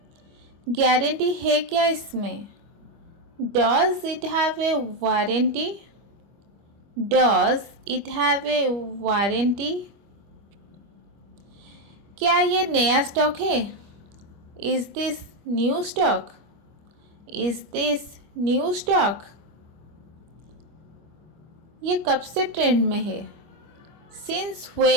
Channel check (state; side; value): late; left; 25 ms